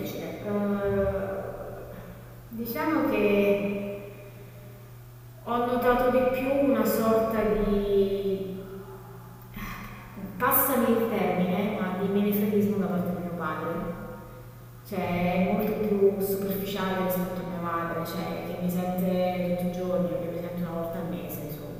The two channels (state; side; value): identical; both; correlation 1.00